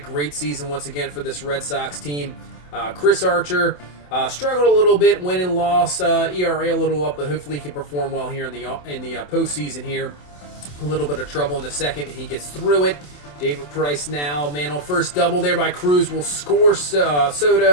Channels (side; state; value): right; late; 27 ms